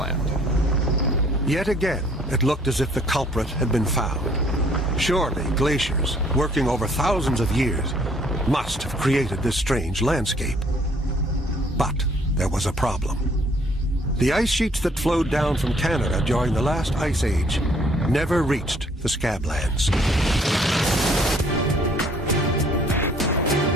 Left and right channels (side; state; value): both; normal; correlation 0.61